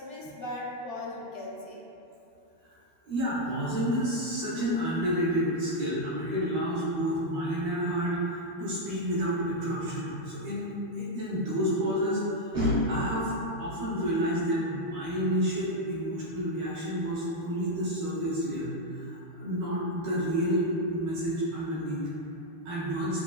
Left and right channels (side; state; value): left; late; 13 ms